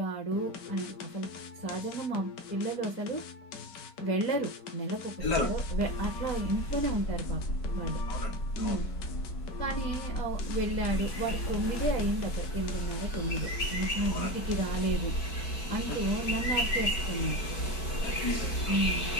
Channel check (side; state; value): right; late; 4.5 ms